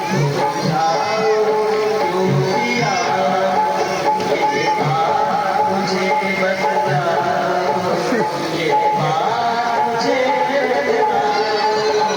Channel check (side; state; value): both; identical; correlation 1.00